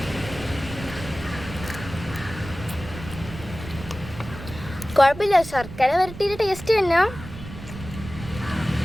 കുഴപ്പമില്ല, ശർക്കര വരട്ടിയുടെ ടേസ്റ്റ് തന്നെ.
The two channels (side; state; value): right; noise; rumble, 12 dB below the sound